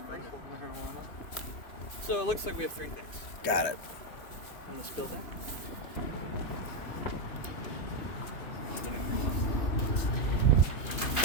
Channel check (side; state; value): right; late; 2.9 ms